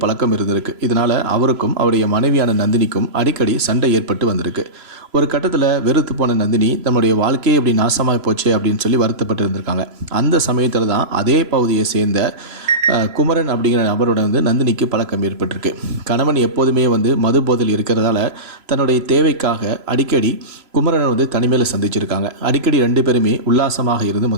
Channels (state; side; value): late; left; 3.0 ms